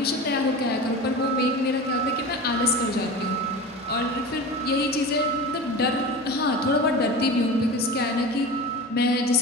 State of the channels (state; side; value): normal; both; correlation 0.31